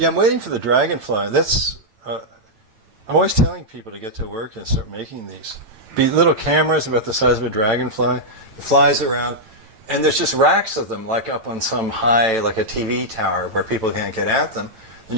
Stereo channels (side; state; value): left; late; 9.0 ms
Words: I'm waiting for the dragonfly. That's. I'm always telling people to get to work and start making these. Be little cameras about the size of a dragonfly. It flies around. And there's just racks of them, like up on some high, like a TV tower, where people can't get at them. Then